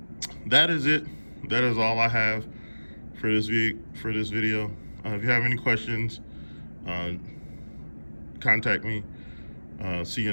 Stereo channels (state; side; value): inverted; both; correlation -1.00